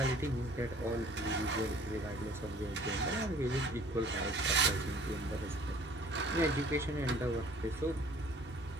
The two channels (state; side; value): normal; both; correlation 0.53